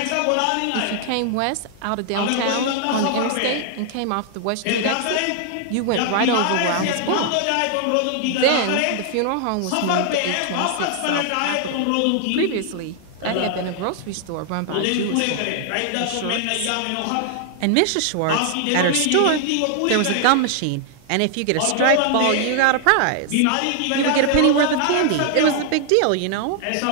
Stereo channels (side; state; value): both; different; correlation 0.00